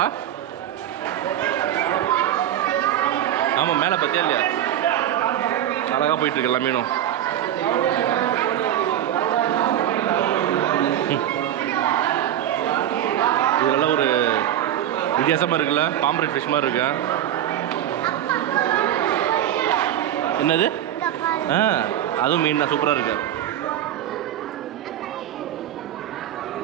ஆமாம் மேலே பார்த்தியா இல்லையா அழகாக போயிட்டுருக்கு எல்லா மீனும். இதெல்லாம் ஒரு வித்தியாசமாக இருக்குல்ல பாம்பரேட் ஃபிஷ் மாதிரி இருக்கு. என்னது அதுவும் மீன் தான் சூப்பராக இருக்கு.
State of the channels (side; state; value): left; quieter; 11.4 dB